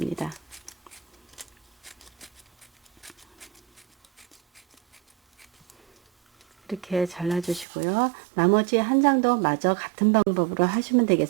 이렇게 잘라주시고요. 나머지 한 장도 마저 같은 방법으로 하시면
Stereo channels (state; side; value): drops out; left; at 7.7 s